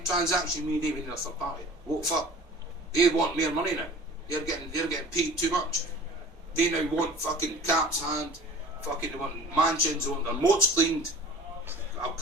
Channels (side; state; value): both; normal; correlation 0.43